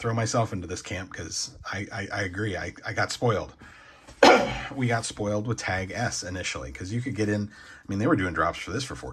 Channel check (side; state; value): both; identical; correlation 1.00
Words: myself into this camp because I agree. I got spoiled. We got spoiled with Tag S initially because you could get in. I mean, they were doing drops for this for